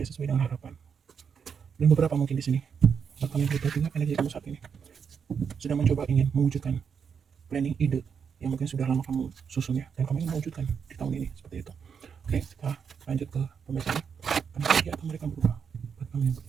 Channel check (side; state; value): left; quieter; 6.8 dB